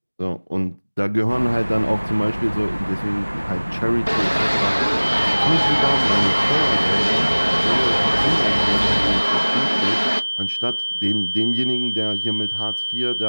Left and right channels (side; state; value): both; inverted; correlation -1.00